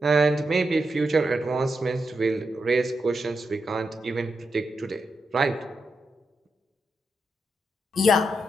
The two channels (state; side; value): normal; both; correlation 0.85